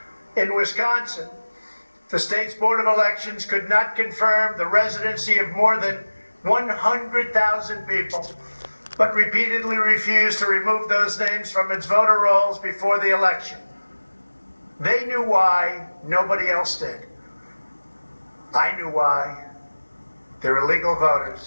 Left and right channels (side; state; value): both; inverted; correlation -1.00